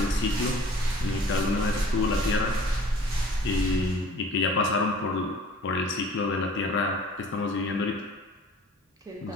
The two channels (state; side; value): normal; both; correlation 0.49